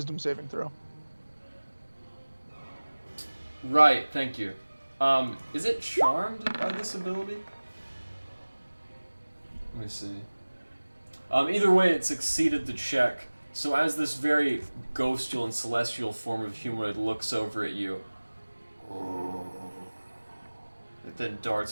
saving throw. Right, thank you. Is it charmed by this ability? Let me see. Either way, it succeeded the check. So as this very ghostly and celestial form of humanoid looks over at you, it then darts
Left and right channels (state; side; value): inverted; both; correlation -1.00